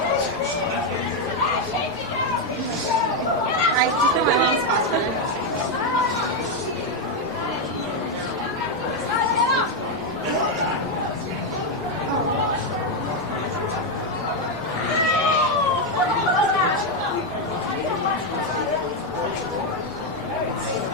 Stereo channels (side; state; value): both; normal; correlation 0.04